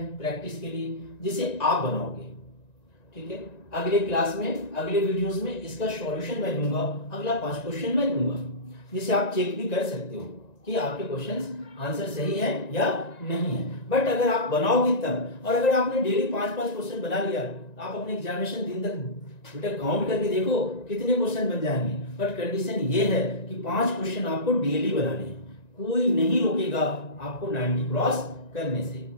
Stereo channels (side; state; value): right; late; 1.9 ms